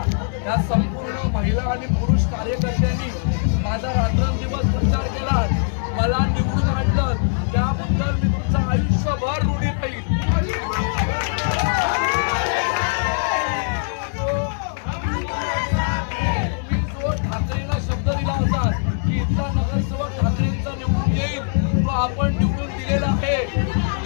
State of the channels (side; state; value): right; silent; digital silence